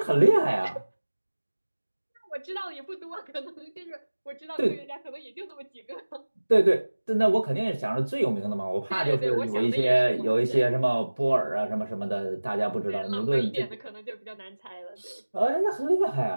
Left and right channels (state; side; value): inverted; both; correlation -1.00